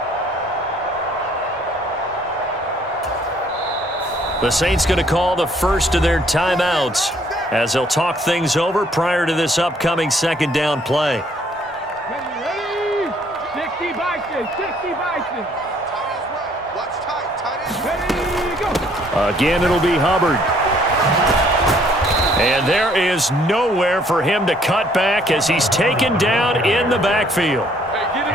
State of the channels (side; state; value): both; normal; correlation 0.63